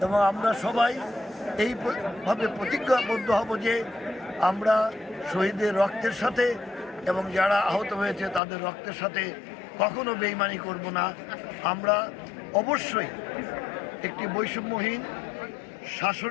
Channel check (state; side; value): drops out; right; at 8.4 s